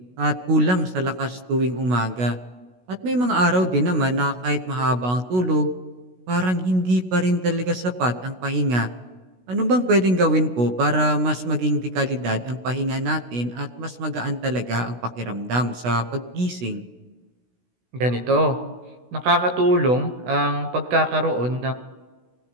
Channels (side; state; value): left; late; 16 ms